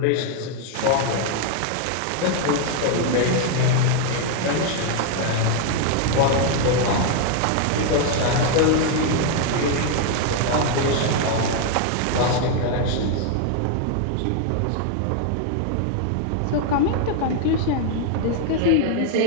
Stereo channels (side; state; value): both; different; correlation 0.01